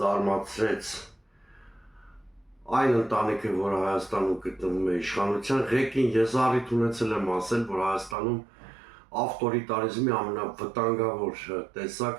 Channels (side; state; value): left; drops out; at 8.2 s